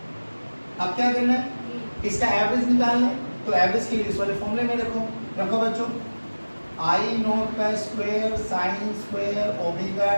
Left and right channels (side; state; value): both; inverted; correlation -1.00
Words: अब क्या करना है? इसका एवरेज निकालना है, तो एवरेज के लिए इस वाले फॉर्मूले में रखो बच्चों, आई नोट का square sine square omega